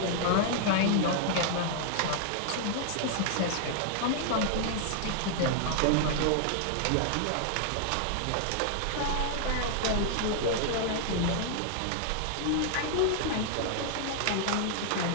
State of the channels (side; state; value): both; different; correlation -0.01